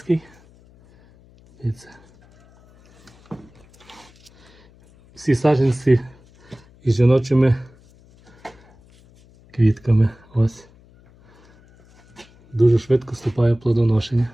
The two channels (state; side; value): noise; left; hum, 28 dB below the sound